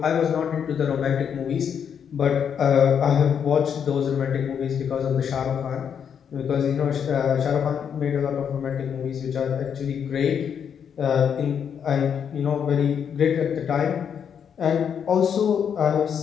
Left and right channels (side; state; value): right; quieter; 7.7 dB